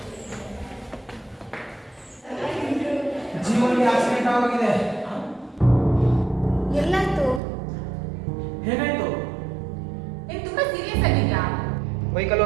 ಜೀವನಿಗೆ ಆಕ್ಸಿಡೆಂಟ್ ಆಗಿದೆ. ಎಲ್ಲಾಯ್ತು? ಏನಾಯ್ತು? ನೀನು ತುಂಬಾ ಸೀರಿಯಸ್ ಆಗಿದ್ಯಾ? ಬೈಕಲ್ಲಿ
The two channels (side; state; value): left; drops out; at 7.4 s